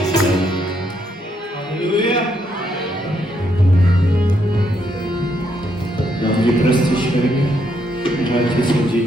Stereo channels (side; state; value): both; normal; correlation 0.75